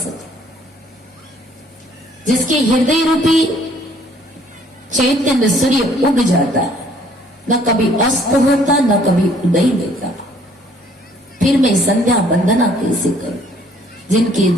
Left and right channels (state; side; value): normal; both; correlation 0.61